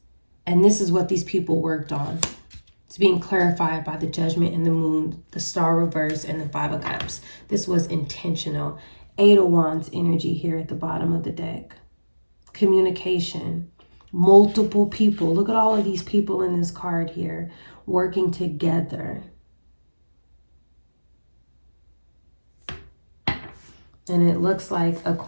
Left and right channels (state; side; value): inverted; both; correlation -1.00